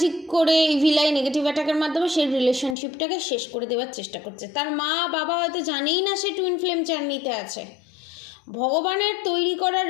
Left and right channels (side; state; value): right; drops out; at 2.8 s